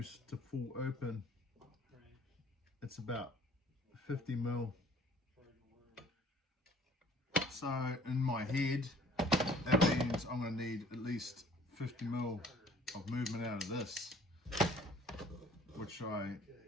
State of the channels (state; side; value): normal; both; correlation 0.54